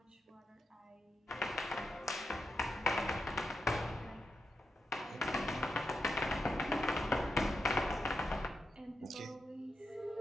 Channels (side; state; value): both; normal; correlation 0.86